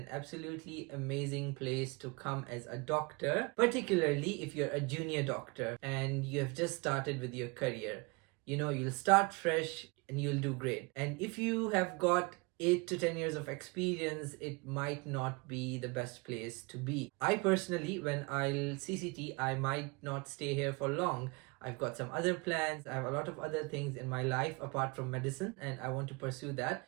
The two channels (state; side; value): quieter; left; 28.5 dB